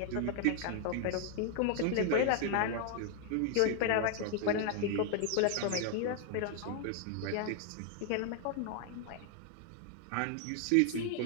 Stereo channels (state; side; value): different; both; correlation 0.00